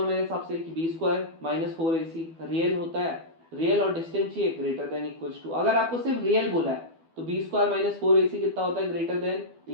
कि b² - 4ac रियल होता है, रियल और डिस्टेंट चाहिए ग्रेटर देन इक्वल्स टू। अगर आपको सिर्फ रियल बोला है तो b² - 4ac कितना होता है, ग्रेटर देन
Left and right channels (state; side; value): late; left; 12 ms